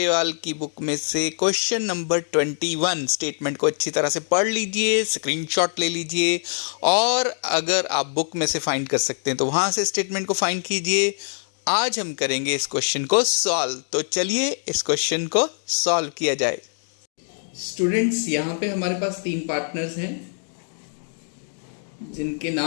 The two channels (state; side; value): silent; right; digital silence